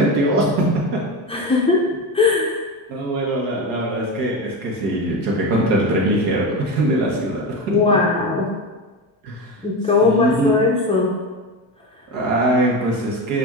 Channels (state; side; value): normal; both; correlation 0.20